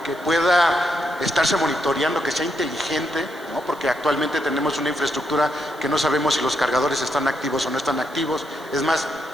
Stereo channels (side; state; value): right; noise; hiss, 24 dB below the sound